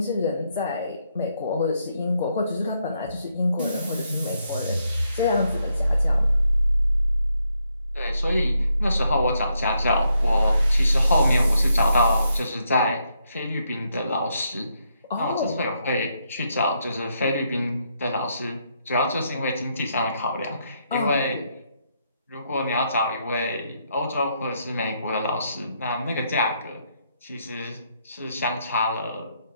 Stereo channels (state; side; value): inverted; both; correlation -0.77